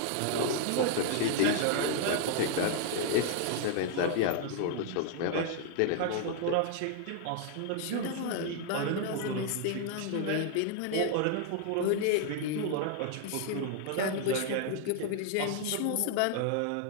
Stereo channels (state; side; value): different; both; correlation 0.00